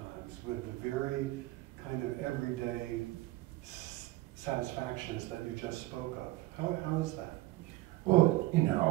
with the very kind of everyday satisfactions that you just spoke of. How is that? Well,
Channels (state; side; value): quieter; left; 18.2 dB